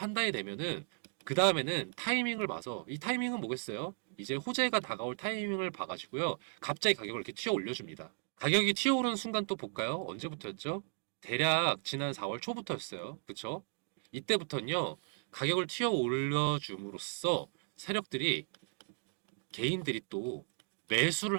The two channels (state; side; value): silent; left; 54 dB below the other